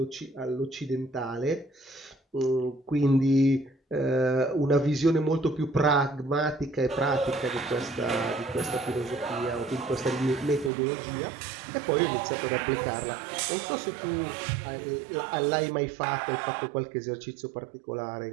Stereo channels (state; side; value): drops out; left; at 10.7 s